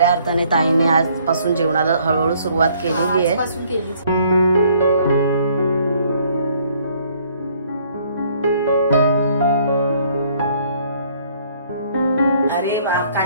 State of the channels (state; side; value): inverted; both; correlation -0.63